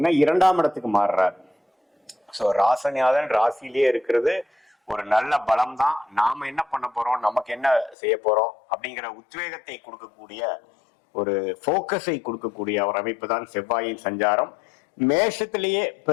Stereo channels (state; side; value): drops out; right; at 8.0 s